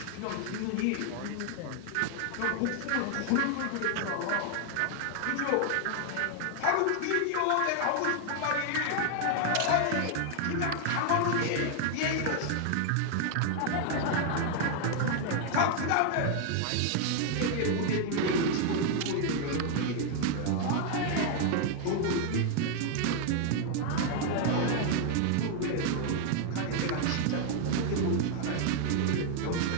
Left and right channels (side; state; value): both; different; correlation 0.00